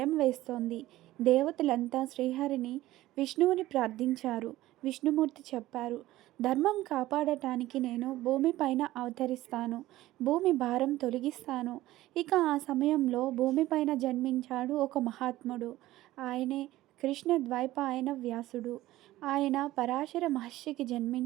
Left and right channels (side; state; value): left; quieter; 16.1 dB